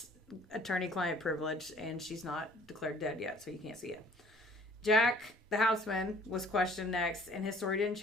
attorney-client privilege, and she's not declared dead yet, so you can't see it. Jack, the houseman, was questioned next, and his story didn't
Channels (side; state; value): both; normal; correlation 0.56